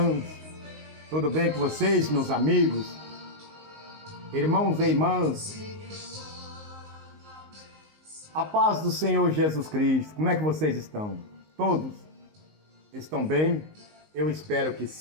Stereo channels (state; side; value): late; left; 19 ms